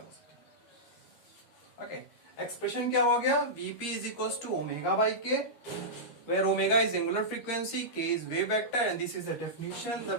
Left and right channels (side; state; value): right; late; 13 ms